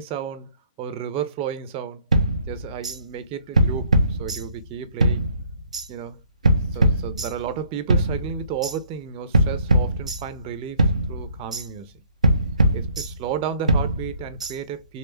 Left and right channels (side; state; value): both; inverted; correlation -0.63